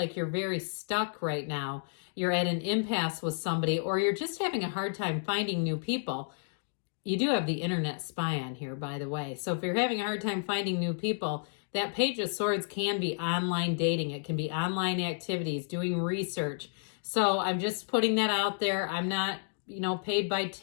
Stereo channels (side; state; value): right; silent; digital silence